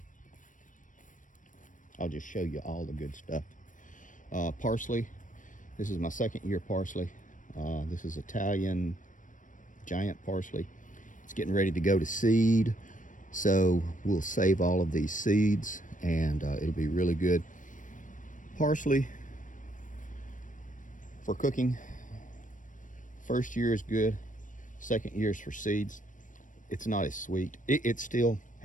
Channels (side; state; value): right; late; 0.38 ms